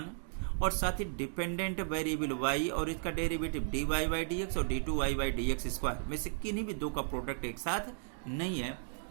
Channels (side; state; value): left; silent; digital silence